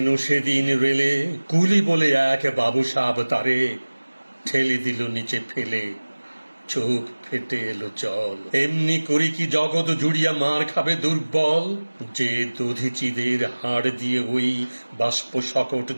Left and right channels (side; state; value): both; inverted; correlation -1.00